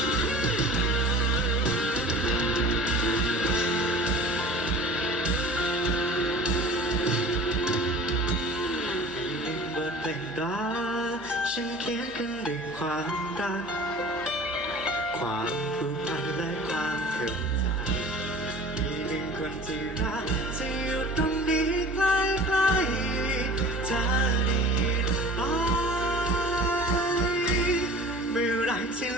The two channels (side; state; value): left; noise; hum, 21 dB below the sound